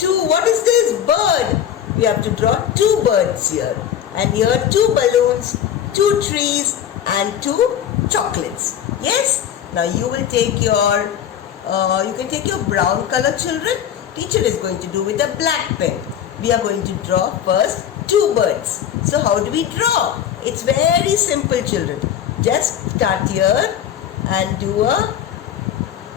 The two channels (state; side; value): quieter; right; 9.6 dB